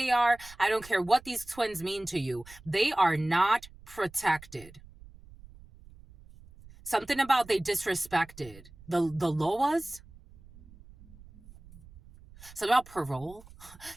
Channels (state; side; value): noise; right; rumble, 21 dB below the sound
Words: are. I don't care what these twins mean to you. They are not protected. Something about they disrespected. The Loas? Something about parole?